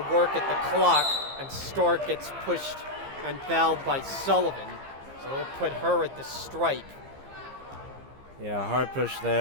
work at the clock, and Stark gets pushed and fouled by Sullivan. So they'll put her at the stripe. Yeah, hard push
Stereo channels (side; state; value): left; late; 15 ms